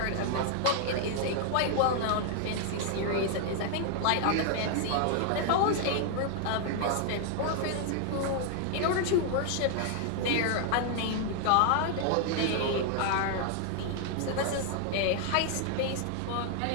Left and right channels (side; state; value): both; different; correlation 0.00